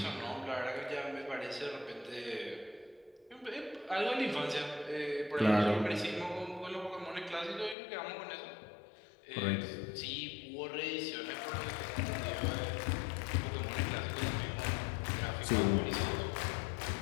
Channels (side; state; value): right; drops out; at 7.8 s